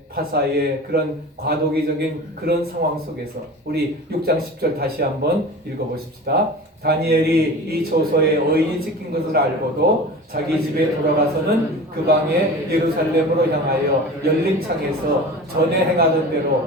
파사의 그런 과도기적인 그런 상황 속에서 우리 6장 10절 다시 한번 읽어보십시다. 다니엘이 이 조서에 의인이 찍힌 것을 알고도 자기 집에 돌아가서는 그 방에 예루살렘으로 향하여 열린 창에서 전에 행하던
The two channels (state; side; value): normal; both; correlation 0.35